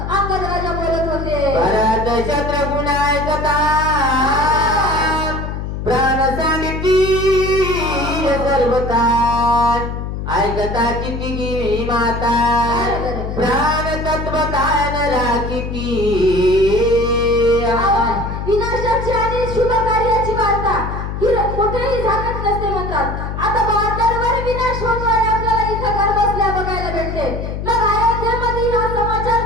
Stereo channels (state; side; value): noise; left; hum, 5 dB below the sound